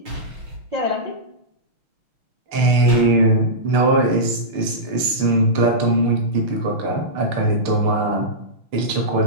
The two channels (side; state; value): left; late; 6.7 ms